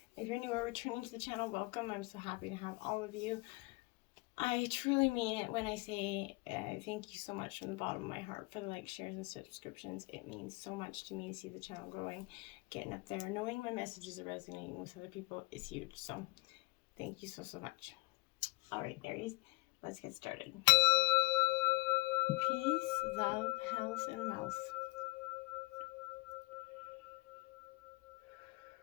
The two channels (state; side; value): quieter; right; 24.3 dB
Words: If you're new or returning to the channel, welcome. I'm so happy to have all of you. I truly mean it when I say thank you so much from the bottom of my heart for the likes, shares, and subscriptions. It means so much to me to see the channel growing, getting up there. Knowing my messages are resonating with other people is huge. So thank you so much. All right, Aries, let's get started. Peace, love, health, and wealth.